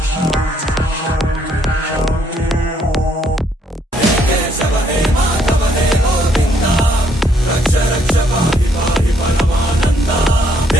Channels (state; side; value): normal; both; correlation 0.69